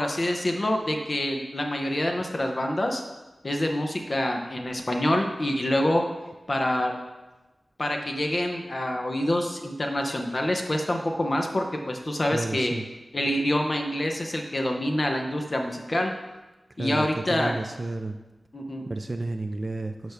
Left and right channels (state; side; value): normal; both; correlation 0.96